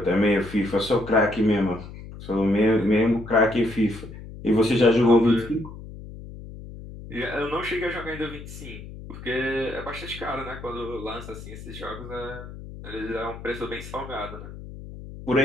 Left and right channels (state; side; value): noise; left; hum, 13 dB below the sound